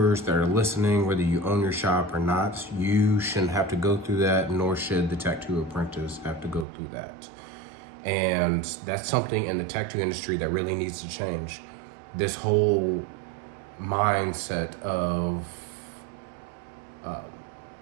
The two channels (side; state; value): left; drops out; at 6.7 s